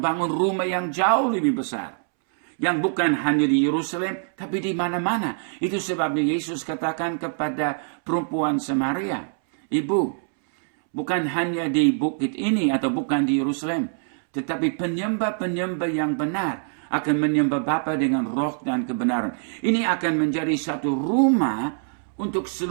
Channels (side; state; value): left; silent; 62 dB below the other